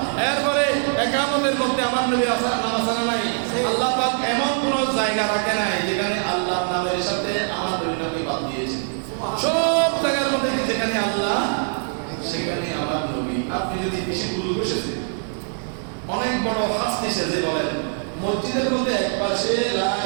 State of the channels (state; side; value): silent; left; digital silence